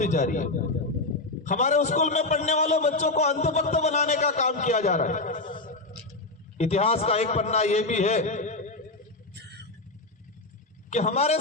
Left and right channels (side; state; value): right; quieter; 3.1 dB